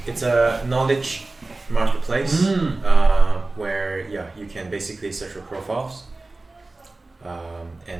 It's a knowledge marketplace where you can basically search for profiles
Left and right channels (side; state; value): left; quieter; 3.2 dB